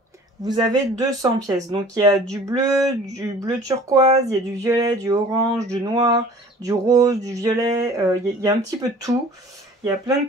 vous avez 200 pièces. Donc il y a du bleu turquoise, il y a du violet, du orange, du noir, du rose, du violet, il y a un petit peu de tout. Il y a plein de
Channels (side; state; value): both; normal; correlation 0.48